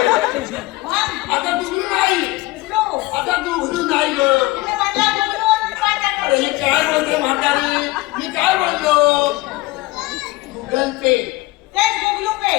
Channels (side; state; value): right; quieter; 20.1 dB